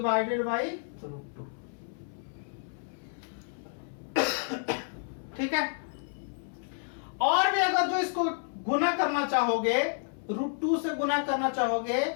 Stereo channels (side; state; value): right; silent; 58 dB below the other